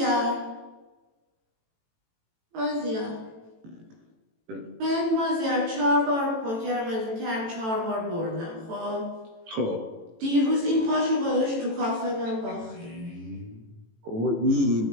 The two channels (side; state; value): left; late; 18 ms